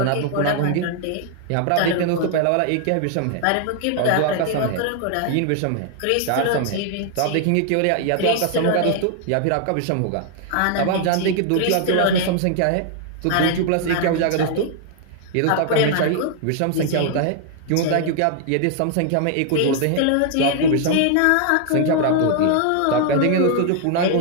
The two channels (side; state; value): both; different; correlation 0.00